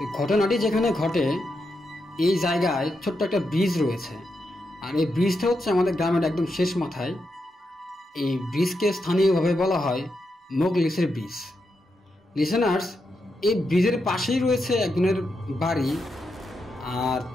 ঘটনাটি যেখানে ঘটে, এই জায়গায় ছোট্ট একটা ব্রিজ রয়েছে। আর এই ব্রিজটা হচ্ছে আমাদের গ্রামের একদম শেষ মাথায়। এই ব্রিজকে স্থানীয়ভাবে বলা হয় মোগলিসের ব্রিজ। লিসেনার্স, এই ব্রিজের পাশেই রয়েছে একজনের বাড়ি, আর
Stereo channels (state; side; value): normal; both; correlation 0.85